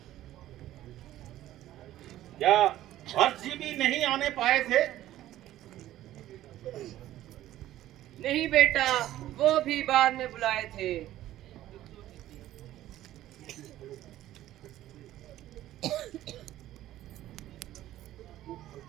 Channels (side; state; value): left; quieter; 13.9 dB